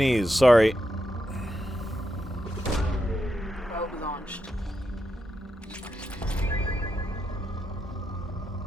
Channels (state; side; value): normal; both; correlation 0.85